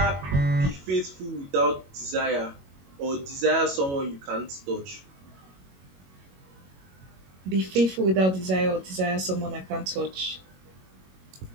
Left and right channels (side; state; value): left; late; 21 ms